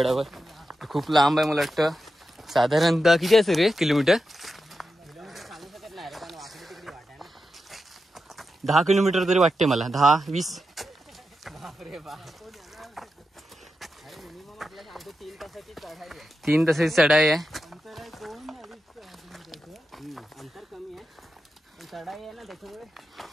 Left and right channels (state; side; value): normal; both; correlation 0.89